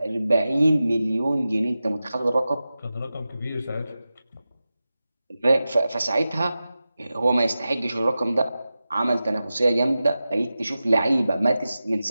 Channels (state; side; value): inverted; both; correlation -0.94